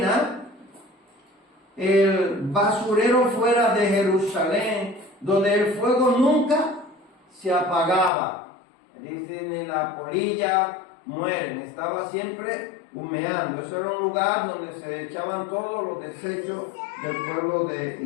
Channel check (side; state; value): right; drops out; at 8.1 s